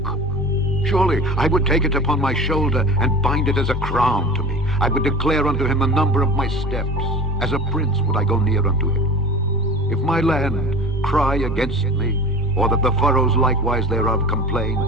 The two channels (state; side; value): normal; both; correlation 0.36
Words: Surely I would take it upon my shoulder and bind it as a crown to me. I would declare unto him the number of my steps. As a prince would I go near unto him. If my land cry against me, or that the furrows likewise thereof complain,